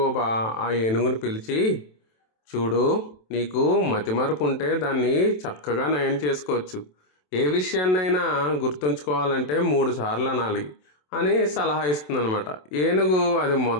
ఆ ఏనుగుని పిలిచి, చూడు, నీకు మతిమరుపు ఉంటే దాన్ని చక్కగా నయం చేసుకోవచ్చు. ఏ విషయాన్నైనా గుర్తుంచుకోవాలంటే 3 సార్లు అనాలి అని సలహా ఇస్తుందన్నమాట. ఏనుగు అది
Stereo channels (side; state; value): right; late; 27 ms